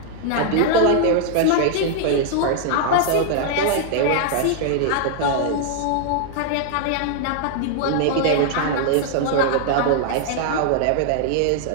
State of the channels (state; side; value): different; both; correlation 0.00